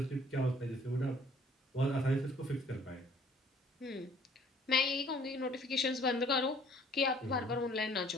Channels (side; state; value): both; normal; correlation 0.57